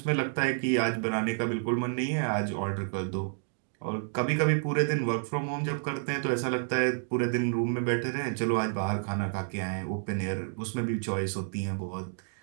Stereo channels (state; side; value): silent; left; digital silence